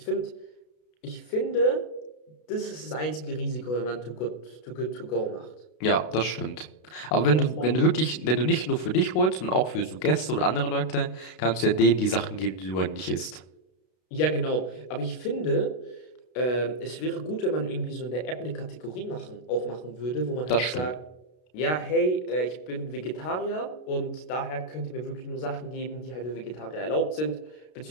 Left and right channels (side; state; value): right; late; 32 ms